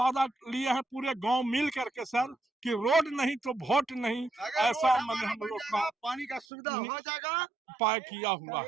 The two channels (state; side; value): drops out; left; at 6.5 s